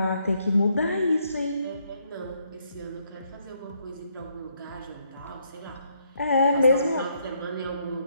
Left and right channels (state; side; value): inverted; both; correlation -0.73